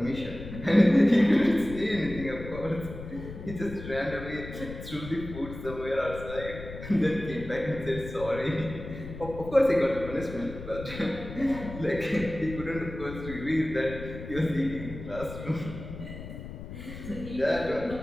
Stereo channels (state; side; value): noise; left; rumble, 11 dB below the sound